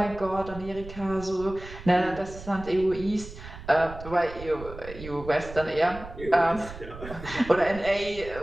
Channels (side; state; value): right; noise; rumble, 14 dB below the sound